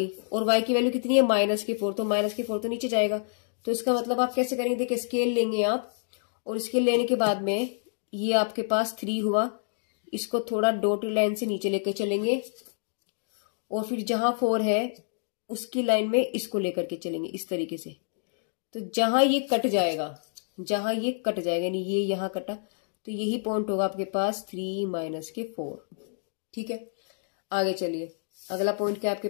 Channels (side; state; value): right; silent; digital silence